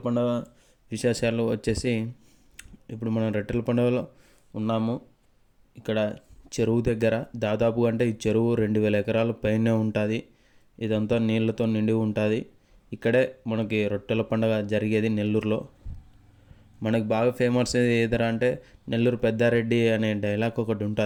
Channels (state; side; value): identical; both; correlation 1.00